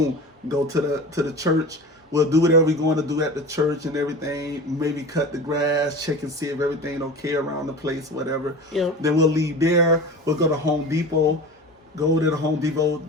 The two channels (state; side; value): normal; both; correlation 0.33